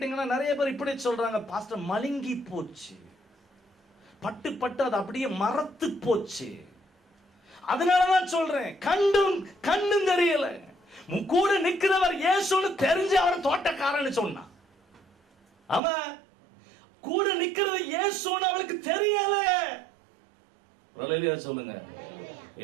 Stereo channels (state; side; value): drops out; left; at 15.8 s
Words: நிறைய பேர் இப்படி சொல்றாங்க, பாஸ்டர் மழுங்கி போச்சு, பட்டு அது அப்படியே மரத்து போச்சு. அதனாலதான் சொல்றேன், கண்ணும் தெரியல. கூட நிக்கிறவர் இயேசுன்னு தெரிஞ்சு அவர் தோட்டக்காரன்னு சொன்னா. ஆமா, கூட நிக்கிறது இயேசுன்னு அவளுக்கு தெரியல. சொல்லுங்க,